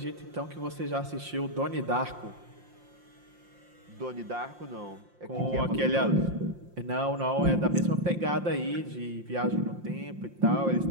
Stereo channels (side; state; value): left; late; 5.7 ms